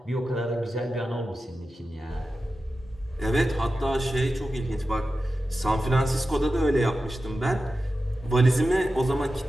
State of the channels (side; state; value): both; normal; correlation 0.92